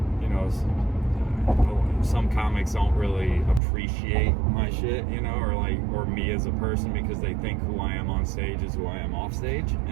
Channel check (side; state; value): left; drops out; at 3.6 s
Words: you know, some comics don't really appreciate my shit, you know, or me as a person, because they think who I am on stage is who I am off stage.